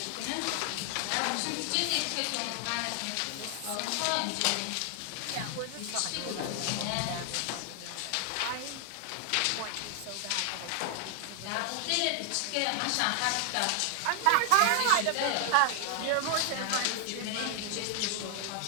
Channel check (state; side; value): different; both; correlation 0.00